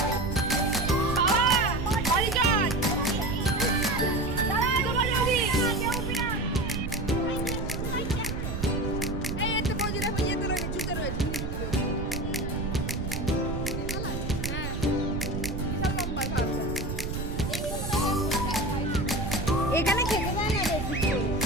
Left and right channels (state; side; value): noise; right; rumble, 4 dB below the sound